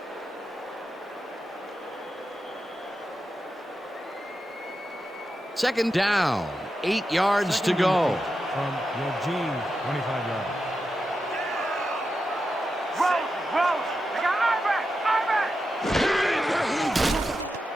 Second down, 8 yards to go. From your G, 25-yard. Rose, they got I-back.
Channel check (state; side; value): normal; both; correlation 0.89